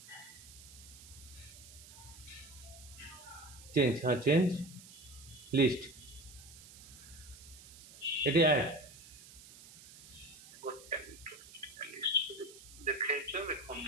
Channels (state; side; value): noise; right; hiss, 18 dB below the sound